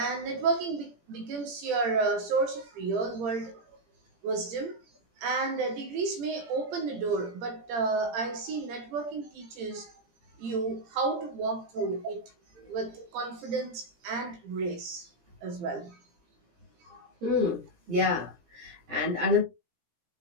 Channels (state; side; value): late; left; 17 ms